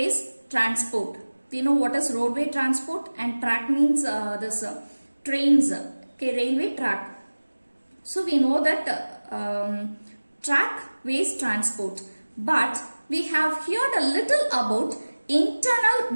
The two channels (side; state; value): both; inverted; correlation -1.00